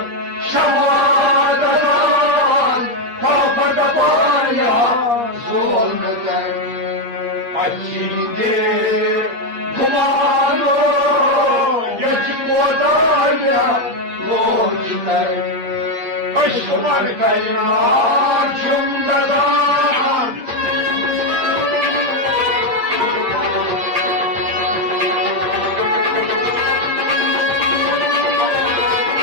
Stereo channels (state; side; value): late; left; 8.5 ms